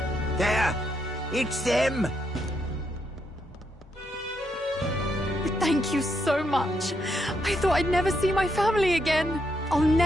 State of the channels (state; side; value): normal; both; correlation 0.78